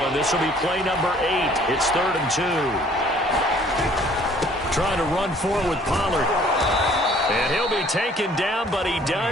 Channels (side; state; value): both; normal; correlation 0.57